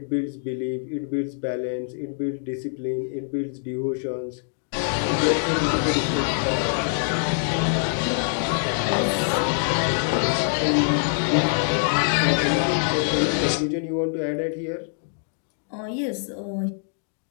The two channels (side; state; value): right; silent; digital silence